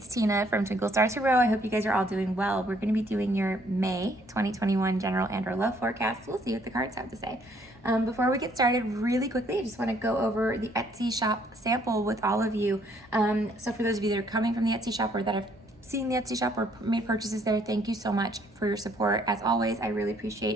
Tina from Twinklestartarot. I hope you guys are all doing well. We're going to be doing your May 2021 general and or love forecast. We'll see what the cards have to say. Before we get started, really quickly, I just want to go over the Etsy shop sample with all of you. So for those of you that are coming from the Etsy shop or that have seen the Etsy shop or made purchases there, thank you so much for your support. As always, I really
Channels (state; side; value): normal; both; correlation 0.65